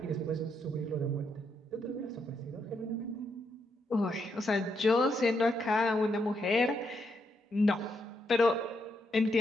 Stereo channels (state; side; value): normal; both; correlation 0.79